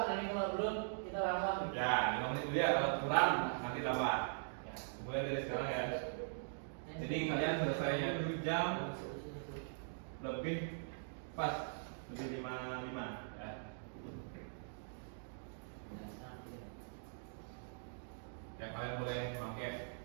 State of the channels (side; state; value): left; silent; digital silence